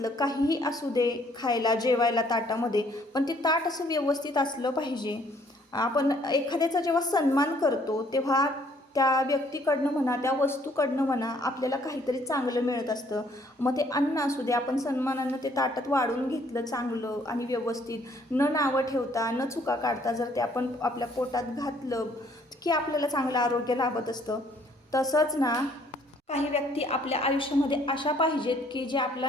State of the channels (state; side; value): normal; both; correlation 0.63